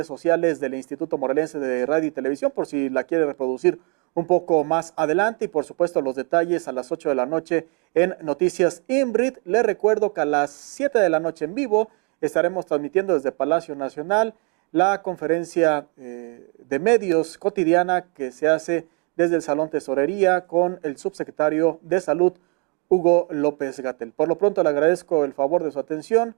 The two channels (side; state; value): left; quieter; 33.6 dB